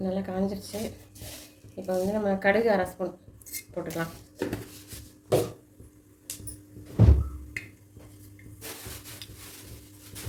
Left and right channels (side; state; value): both; identical; correlation 1.00